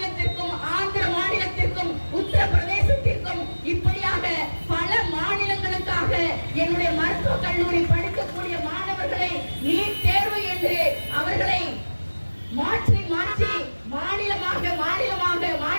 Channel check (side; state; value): both; inverted; correlation -1.00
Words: ஆந்திர மாநிலத்திற்கும் உத்தரப்பிரதேசத்திற்கும் இப்படியாக பல மாநிலங்களுக்காக என்னுடைய மருத்துவக் கல்லூரி படிக்கக்கூடிய மாணவர்களை நீட் தேர்வு என்று அவர்களை மாற்றி மாற்றி மாநிலமாக மாநிலமாக